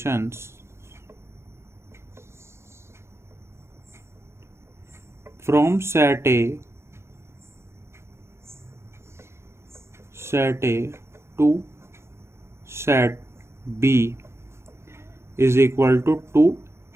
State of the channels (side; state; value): left; late; 0.13 ms